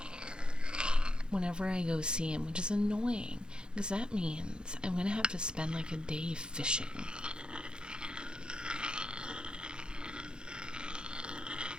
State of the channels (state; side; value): late; left; 0.049 ms